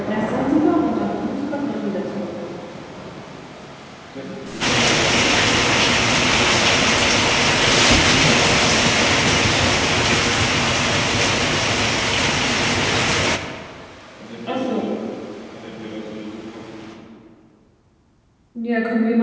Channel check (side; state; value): both; identical; correlation 1.00